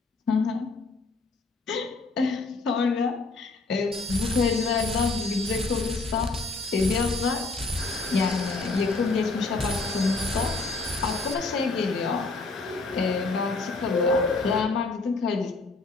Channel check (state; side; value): quieter; right; 3.7 dB